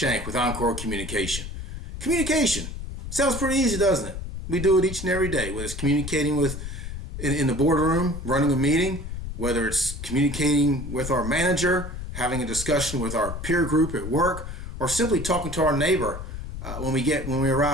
with Encore Communication. Communication sounds pretty easy, doesn't it? We do it each and every day, whether it's communicating in the boardroom, running a meeting, whether it's communicating with our manager, having a discussion with our peer group at work, or simply talking to our neighbor when we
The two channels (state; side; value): noise; left; rumble, 8 dB below the sound